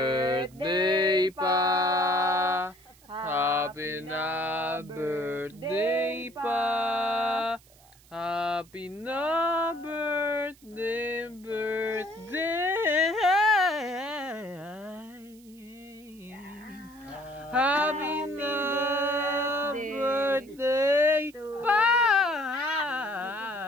pa. Happy na birthday pa. Happy na birthday, birthday. Happy na birthday pa.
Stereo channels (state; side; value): noise; right; hiss, 27 dB below the sound